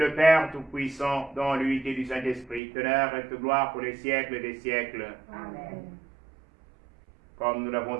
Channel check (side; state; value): left; drops out; at 2.6 s